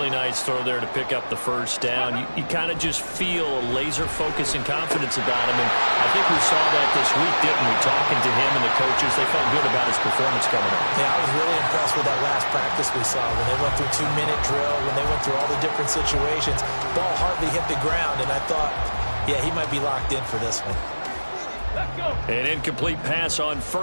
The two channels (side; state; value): both; inverted; correlation -1.00